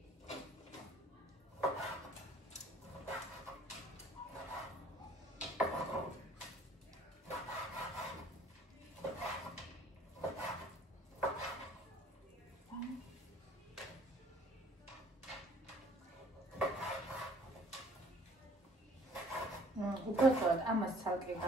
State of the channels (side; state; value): both; normal; correlation 0.56